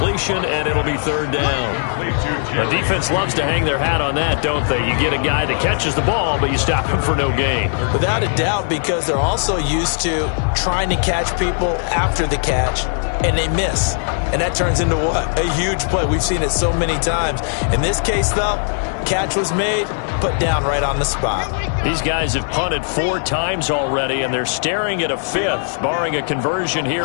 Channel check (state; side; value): silent; right; digital silence